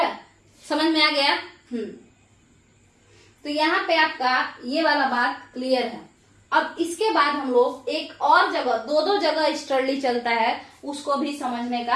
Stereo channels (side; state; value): both; identical; correlation 1.00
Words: समझ में आ गया? तो यहाँ पे आपका ये वाला बात क्लियर है। अब इसके बाद हम लोग एक और जगह, दो जगह ईस्टर्ली चलता है, उसको भी समझने